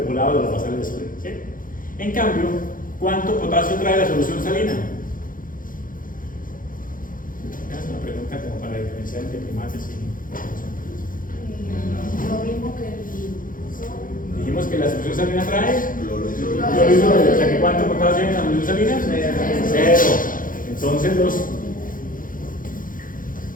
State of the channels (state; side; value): late; right; 0.40 ms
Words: volado de los basales de sodio, ¿sí? En cambio, ¿cuánto potasio trae la solución salina? Es una pregunta como para diferenciar entre primates y... Lo mismo que el sodio. Dijimos que la solución salina trae cloruro, o sea que ¿cuánto potasio hay en la solución salina? 0. Entonces los